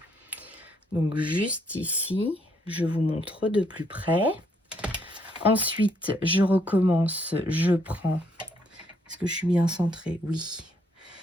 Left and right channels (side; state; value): both; normal; correlation 0.71